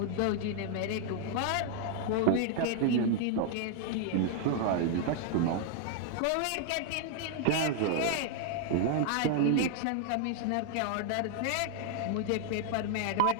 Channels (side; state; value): both; different; correlation 0.00